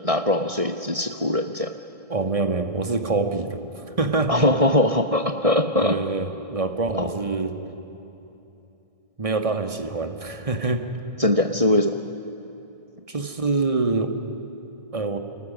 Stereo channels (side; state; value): left; late; 1.6 ms